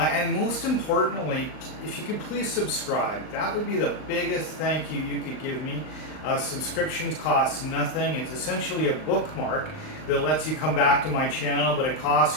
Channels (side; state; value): right; late; 39 ms